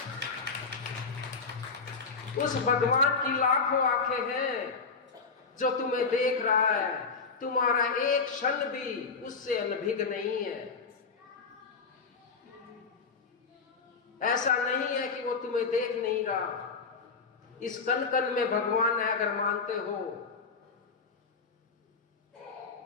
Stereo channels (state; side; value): quieter; right; 4.9 dB